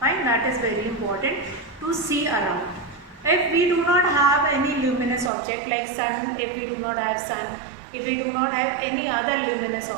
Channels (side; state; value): left; drops out; at 5.3 s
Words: that is very important to see around. If we do not have any luminous object like sun, if we do not have sun, if we do not have any other luminous